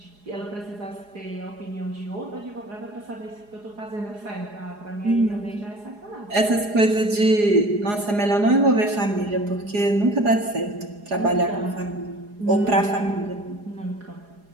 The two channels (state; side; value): late; left; 4.8 ms